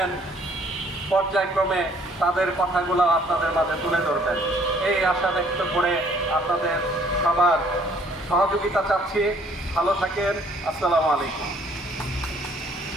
পর্যায়ক্রমে তাদের কথাগুলো আপনাদের মাঝে তুলে ধরবেন এই আশা ব্যক্ত করে আপনাদের সবার সহযোগিতা চাচ্ছি। ভালো থাকেন। আসসালামু আলাইকুম।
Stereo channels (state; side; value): normal; both; correlation 0.60